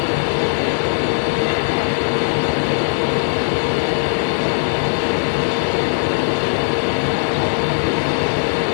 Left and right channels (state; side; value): silent; right; digital silence